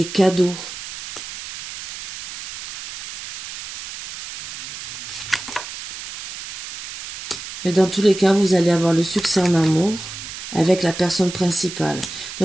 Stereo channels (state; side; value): noise; right; hiss, 11 dB below the sound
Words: cadeaux. Mais dans tous les cas, vous allez avoir le succès en amour avec la personne principale.